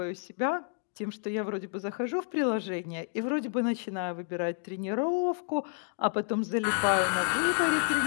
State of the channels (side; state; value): right; silent; 58 dB below the other